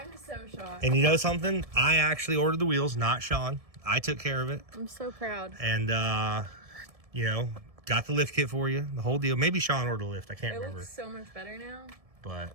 so shocked. And you know something? I actually ordered the wheels, not Sean. I took care of it. I'm so proud. And, got the lift kit for you, the whole deal. Maybe Sean ordered a lift. I can't It remember. looks so much better now. But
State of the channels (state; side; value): late; left; 1.7 ms